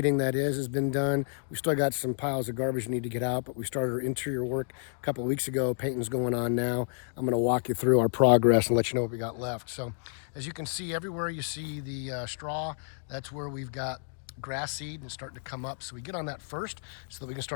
that is, has been done. We still got some piles of garbage need to get out, but we started our interior work a couple of weeks ago. Painting's going on now. I'm going to walk you through our progress and let you know what we got left. So as you can see, everywhere you see the straw, that's where we've got grass seed and starting to come up. So we get on that first so that we can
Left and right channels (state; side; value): silent; right; 58 dB below the other